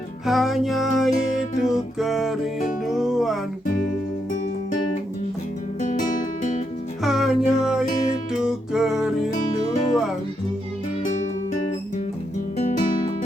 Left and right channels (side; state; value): both; normal; correlation 0.81